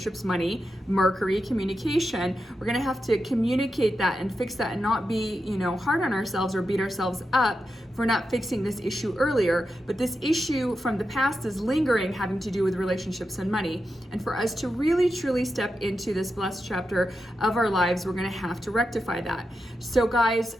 money, Mercury, communication. We're going to have to communicate that and fix that and not be, hard on ourselves or beat ourselves up for not fixing this issue earlier. But this issue from the past is lingering, having to do with relationships and money. And for us to really truly step into this blessed chapter of our lives, we're going to have to rectify that. So guys,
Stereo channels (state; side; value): normal; both; correlation 0.88